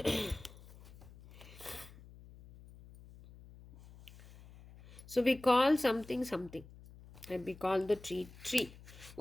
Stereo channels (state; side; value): noise; left; hum, 20 dB below the sound